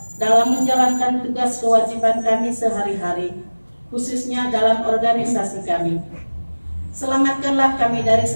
dalam menjalankan tugas kewajiban kami sehari-hari, khususnya dalam organisasi kami. Selamatkanlah kami dari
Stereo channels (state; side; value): inverted; both; correlation -1.00